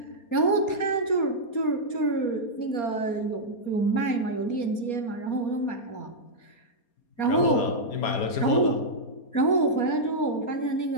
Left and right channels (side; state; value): right; late; 4.3 ms